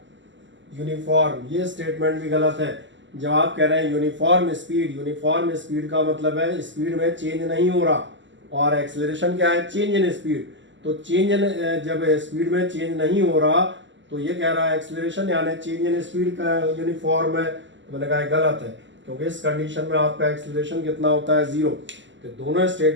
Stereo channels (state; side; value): late; left; 0.54 ms